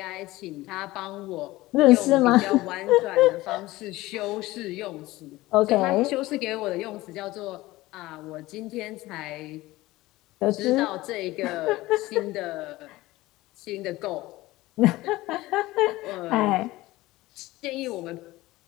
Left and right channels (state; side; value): quieter; right; 18.5 dB